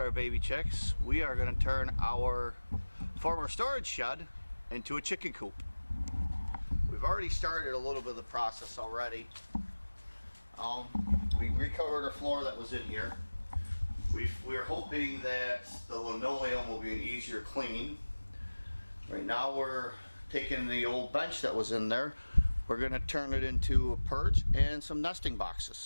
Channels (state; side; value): inverted; both; correlation -1.00